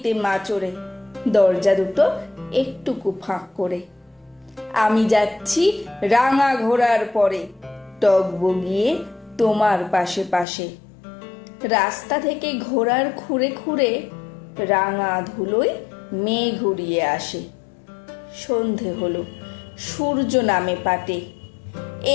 মা চড়ে, দরজা দুটো একটুকু ফাঁক করে। আমি যাচ্ছি রাঙা ঘোড়ার পরে, টগবগিয়ে তোমার পাশে পাশে। রাস্তা থেকে ঘোড়ার খুঁড়ে খুঁড়ে রাঙা ধুলোয় মেঘ উড়িয়ে আসে। সন্ধে হলো, সূর্য নামে পাটে,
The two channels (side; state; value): right; drops out; at 10.5 s